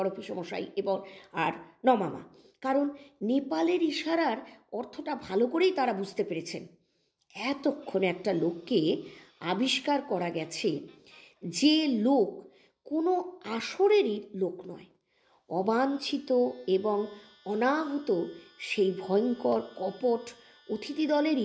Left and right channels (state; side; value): identical; both; correlation 1.00